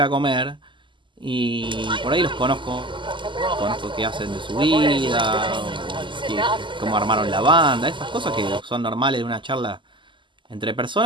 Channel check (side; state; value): left; late; 0.24 ms